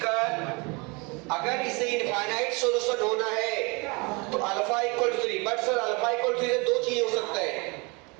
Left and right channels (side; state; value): left; quieter; 28.7 dB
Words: अगर इसे इनफाइनाइट सॉल्यूशन होना है तो alpha equal to 3, but sir alpha equal to 3 से दो चीजें हो सकता है,